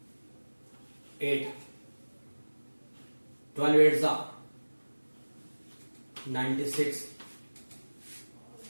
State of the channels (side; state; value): both; inverted; correlation -1.00